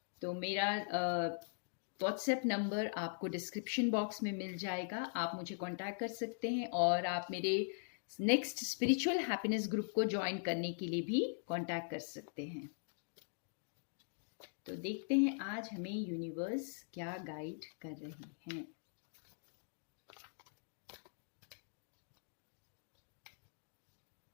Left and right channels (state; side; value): silent; right; digital silence